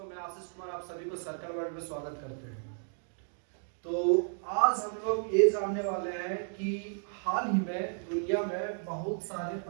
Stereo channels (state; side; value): silent; left; digital silence